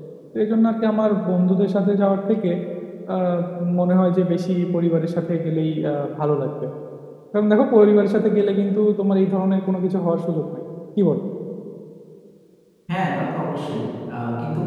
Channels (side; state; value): both; identical; correlation 1.00